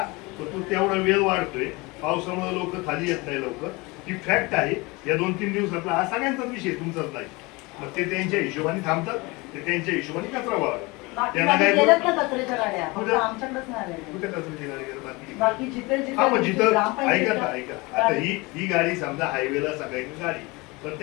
तर तो तेवढा वेळ वाढतोय पावसामुळे लोक खाली येत नाही लवकर ही फॅक्ट आहे या 2-3 दिवसातला हा सगळ्यांचाच विषय तुमचाच नाही मग ते त्यांच्या हिशोबाने थांबतात, ते त्यांच्या हिशोबाने कचरा व्हावा. बाकी त्यांना गाडी काय गेल्यात ना कचऱ्याच्या गाड्या, फक्त कुठं? आमच्याकडेच नाही आलेल्या. कुठे कचऱ्याची गाडी गेली बाकी? बाकी जिथे हा मग जिथे जिथं ग्रामपंचायत ऐका ऐका आता ही गाडी समजा हायवेला सगळ्यांची गाडी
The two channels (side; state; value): right; quieter; 24.7 dB